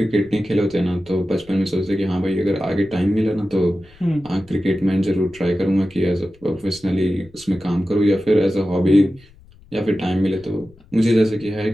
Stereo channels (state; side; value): noise; left; rumble, 26 dB below the sound